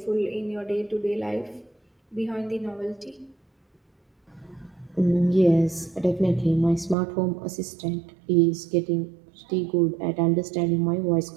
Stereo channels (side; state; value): left; drops out; at 7.0 s